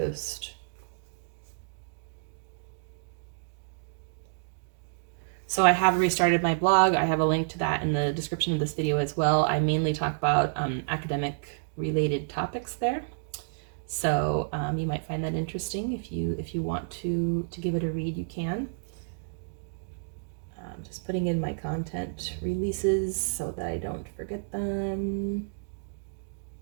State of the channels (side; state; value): left; silent; digital silence